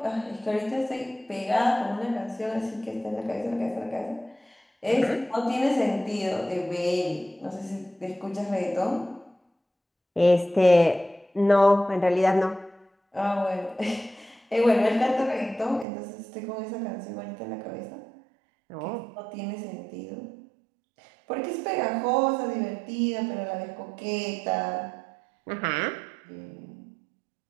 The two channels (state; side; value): drops out; left; at 15.9 s